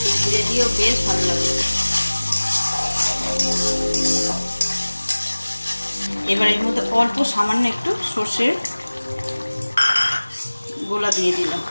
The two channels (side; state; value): both; inverted; correlation -1.00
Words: জিরে দিয়েও বেশ ভালো লাগে। এবার এর মধ্যে অল্প সামান্য একটু সর্ষের গোলা দিয়ে দিলাম।